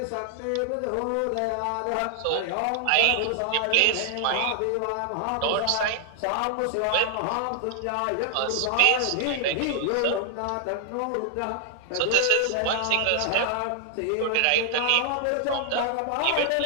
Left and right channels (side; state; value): both; different; correlation 0.00